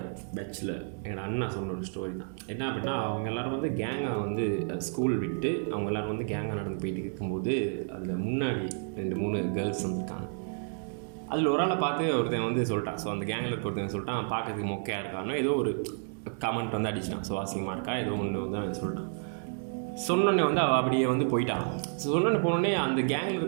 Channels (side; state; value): left; silent; 57 dB below the other